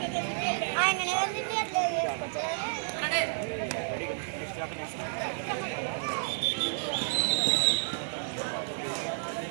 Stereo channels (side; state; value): left; silent; 57 dB below the other